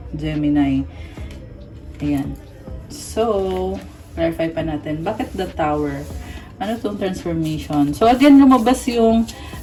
Gemini. Ayan. So, clarify pa natin. Bakit the Tower? Ano tong transformation? So, again, lumabas yung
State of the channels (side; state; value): both; identical; correlation 1.00